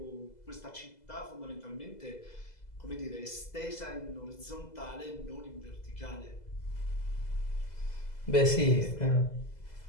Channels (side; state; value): right; late; 2.0 ms